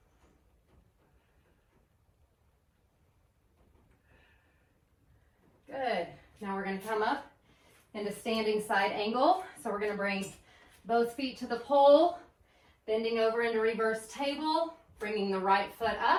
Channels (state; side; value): identical; both; correlation 1.00